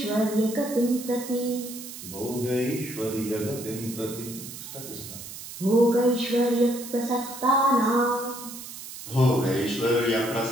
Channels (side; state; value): right; noise; hiss, 12 dB below the sound